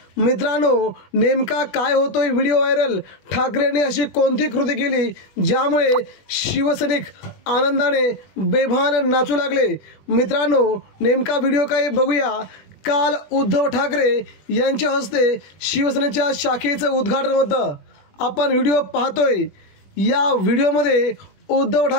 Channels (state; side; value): late; right; 20 ms